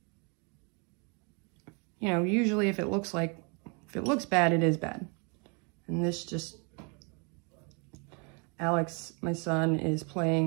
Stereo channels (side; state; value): left; quieter; 34.0 dB